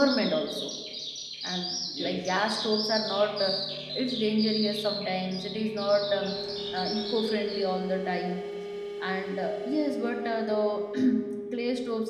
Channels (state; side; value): identical; both; correlation 1.00